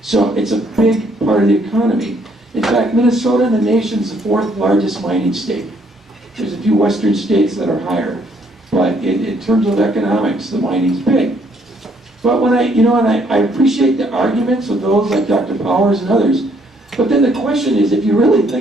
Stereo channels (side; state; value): both; normal; correlation 0.67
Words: So it's a big part of the economy. In fact, Minnesota in the nation's the 4th largest mining state. There's a few western states that are higher. But in terms of economics, the mining's big. But when I appreciate the arguments of those like Dr. Powers and others, but then the question is, if you really